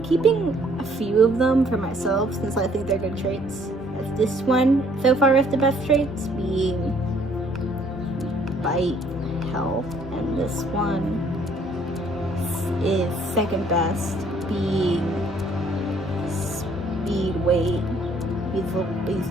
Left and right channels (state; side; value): normal; both; correlation 0.62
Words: Keeping a few of them for myself since I think they're good traits. As this one so far is the best traits, being bite, health, and this one is second best, being speed, weight. These